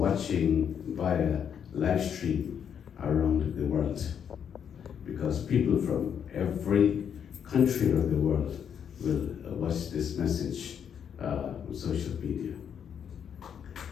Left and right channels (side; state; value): right; quieter; 8.1 dB